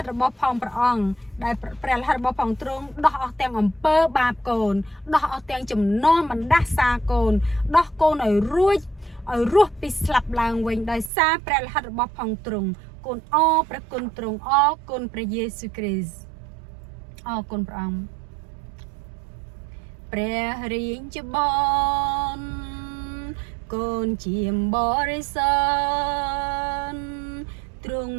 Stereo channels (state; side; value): drops out; left; at 11.1 s